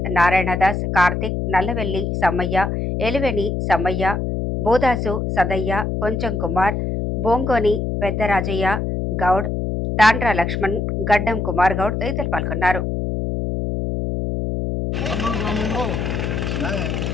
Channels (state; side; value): noise; left; hum, 1 dB below the sound